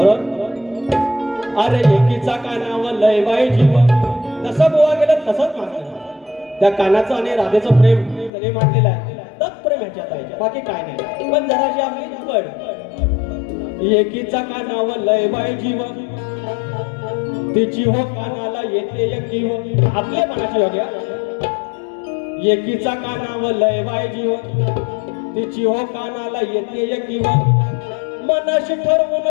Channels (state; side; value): drops out; right; at 8.3 s